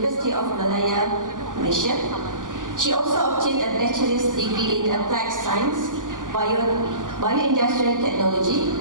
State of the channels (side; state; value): left; late; 0.88 ms